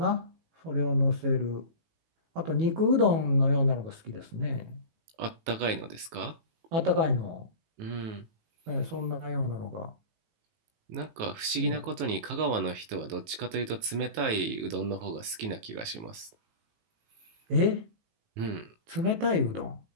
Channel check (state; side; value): late; left; 18 ms